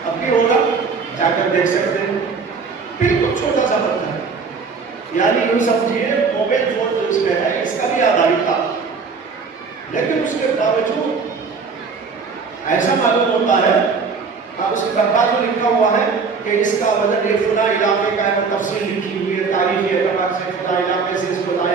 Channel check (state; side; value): quieter; left; 5.1 dB